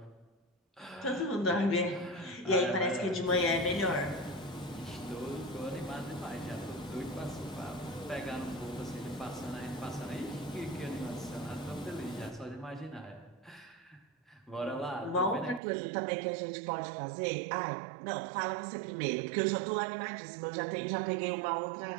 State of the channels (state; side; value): drops out; left; at 15.6 s